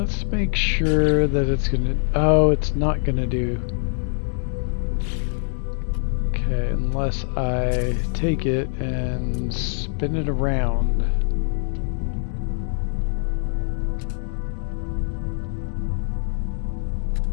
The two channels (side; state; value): right; silent; digital silence